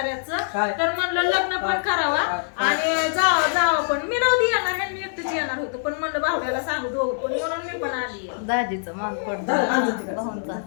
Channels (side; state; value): right; silent; 63 dB below the other